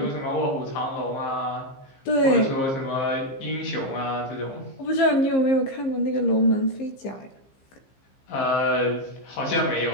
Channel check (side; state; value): right; late; 15 ms